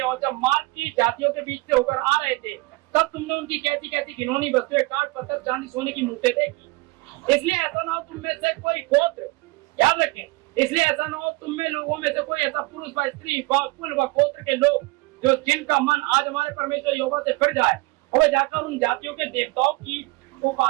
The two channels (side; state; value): left; quieter; 23.3 dB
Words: और जब मार्ग की जातियों के बीच से होकर आ रहे थे, तब तुमने उनकी कैसी कैसी घिनौनी वस्तुएं, काठ पत्थर, चांदी, सोने की मूर्तें देखी। इसलिए ऐसा ना हो तुम में से कोई गोत्र, याद रखें, इसलिए ऐसा ना हो तुम में लोगों में से कोई ऐसा पुरुष व स्त्री व कुल व गोत्र के लोग जो जिनका मन आज हमारे परमेश्वर यहोवा से फिर जाए और वे जाकर उन जातियों के देवताओं की